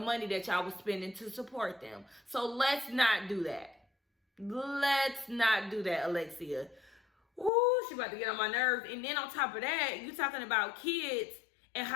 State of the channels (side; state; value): right; drops out; at 7.5 s